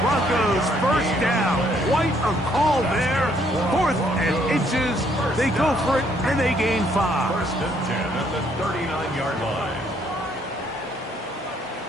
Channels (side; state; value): both; normal; correlation 0.68